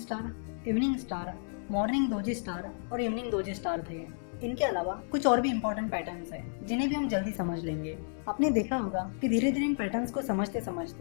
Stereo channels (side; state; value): right; silent; digital silence